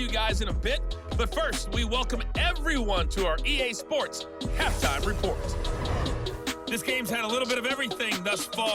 you guys in a bit. But first, we welcome everyone to our EA Sports Halftime Report. This game's had a little bit of everything thus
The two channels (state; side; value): identical; both; correlation 1.00